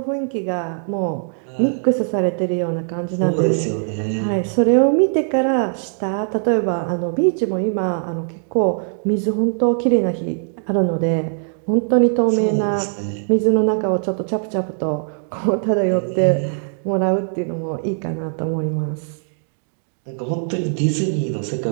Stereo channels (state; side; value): silent; left; digital silence